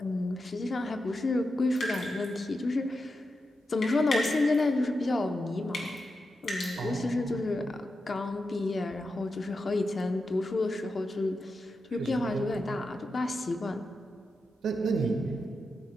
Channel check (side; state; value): both; normal; correlation 0.89